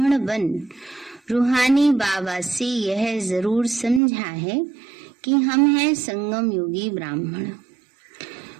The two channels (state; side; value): drops out; left; at 4.0 s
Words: बन रूहानी बाबा से यह जरूर समझा है कि हम हैं संगम योगी ब्राह्मण।